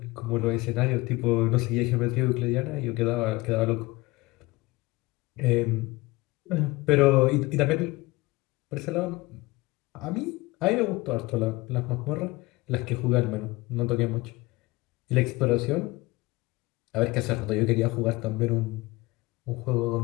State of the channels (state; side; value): quieter; right; 21.5 dB